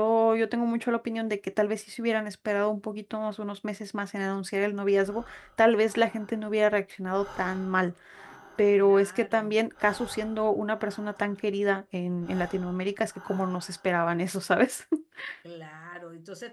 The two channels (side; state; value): both; identical; correlation 1.00